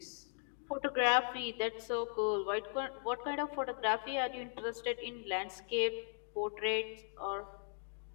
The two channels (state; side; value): silent; right; 52 dB below the other